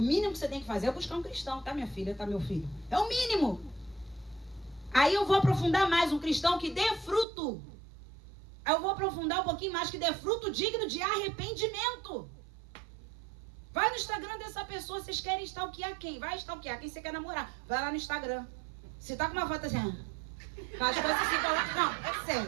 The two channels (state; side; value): drops out; left; at 7.2 s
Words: mínimo que você tem que fazer é buscar um cristão, tá, minha filha, tá, meu filho? É o mínimo. Aí eu vou aprofundar mais, um cristão que dê fruto. Aí eu vou aprofundar um pouquinho mais, que dê fruto digno de arrependimento. Vai no Instagram dessa pessoa, vocês querem stalkear quem? Vai stalkear quem você quer namorar. Vai lá no Instagram. Se tá com uma foto assim, faz coisas assim, não, é